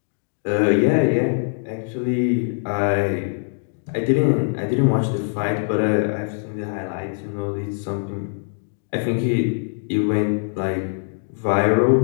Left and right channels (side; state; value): right; silent; digital silence